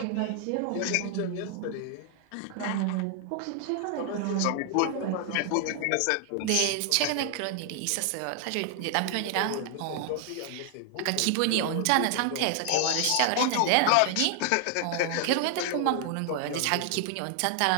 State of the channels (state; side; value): different; both; correlation 0.00